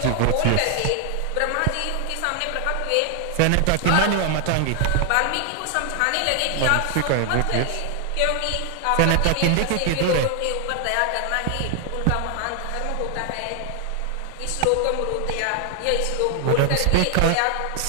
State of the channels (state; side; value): different; both; correlation 0.00